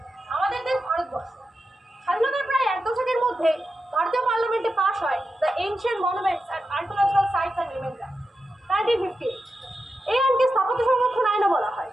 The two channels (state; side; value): normal; both; correlation 0.89